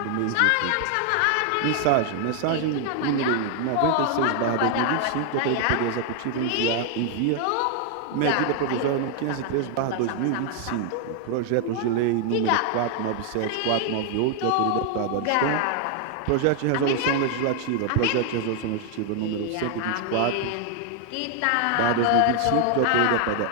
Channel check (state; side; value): different; both; correlation 0.00